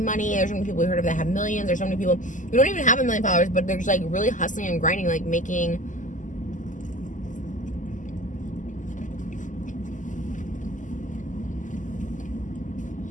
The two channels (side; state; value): right; late; 0.37 ms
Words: money. There's so many people you heard of that have millions. There's so many people who don't even have 1 million followers, but they're just like really hustling and grinding, like making